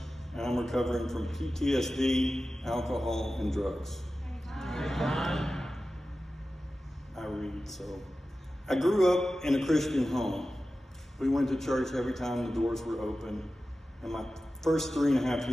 and I'm recovering from PTSD, alcohol, and drugs. I read, so. I grew up in a Christian home. We went to church every time the doors were open, and my first 3.5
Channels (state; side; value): normal; both; correlation 0.94